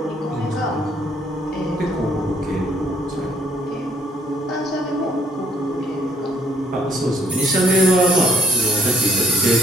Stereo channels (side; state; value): both; normal; correlation 0.64